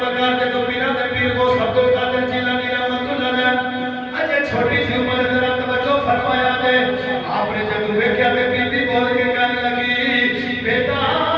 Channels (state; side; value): identical; both; correlation 1.00